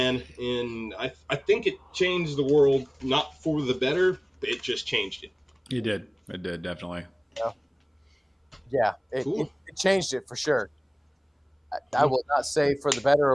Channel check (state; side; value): identical; both; correlation 1.00